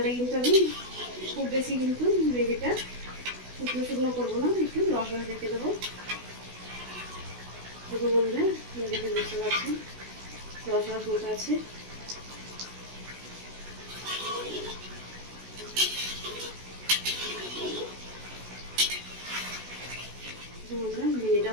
কিন্তু আমি খুব বেশি কিন্তু গ্রেভিটা শুকনো শুকনো করবো না, একটু রস রস রেখে দেবো। দেখুন বন্ধুরা দেখে বুঝতে পারছেন রস রস মতো আছে। বন্ধুরা ভেন্ডিটা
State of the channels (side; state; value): left; late; 16 ms